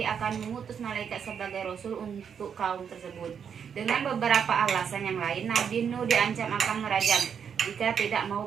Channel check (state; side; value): quieter; left; 7.4 dB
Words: akan mengutus malaikat sebagai rasul untuk kaum tersebut. Dengan beberapa alasan yang lain, Nabi Nuh diancam akan merajam jika tidak